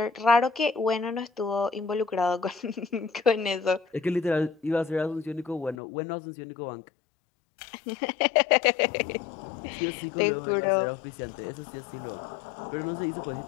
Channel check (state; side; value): drops out; right; at 5.8 s